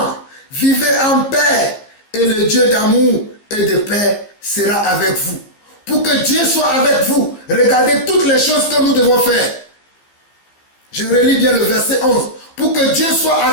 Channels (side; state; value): right; late; 15 ms